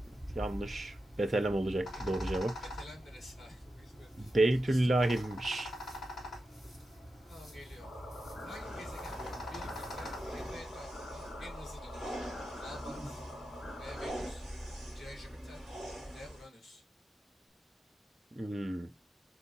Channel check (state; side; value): normal; both; correlation 0.90